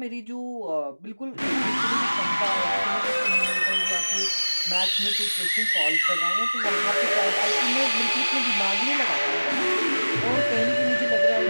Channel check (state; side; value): inverted; both; correlation -1.00